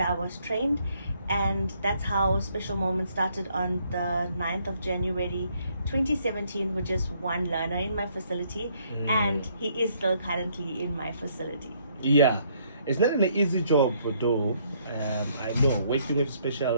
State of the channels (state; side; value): inverted; both; correlation -0.68